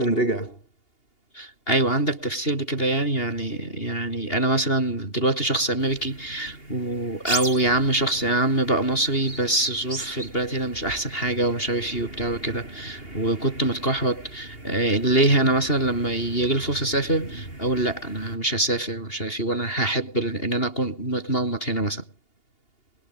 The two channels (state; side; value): late; right; 2.8 ms